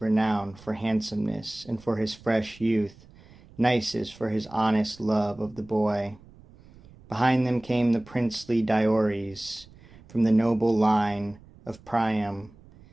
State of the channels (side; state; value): right; noise; rumble, 24 dB below the sound